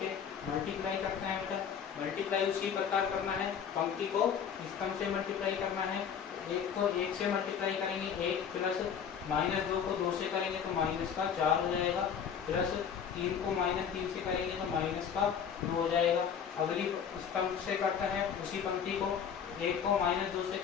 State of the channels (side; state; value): right; quieter; 7.6 dB